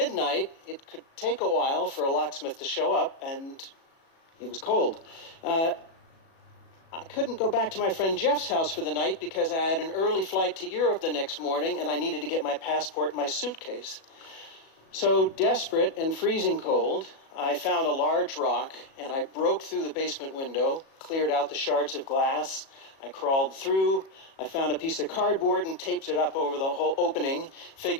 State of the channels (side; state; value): right; late; 37 ms